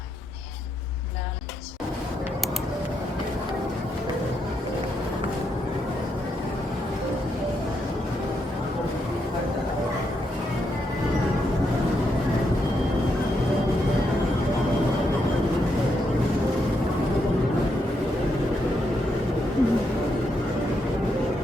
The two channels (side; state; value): both; normal; correlation 0.80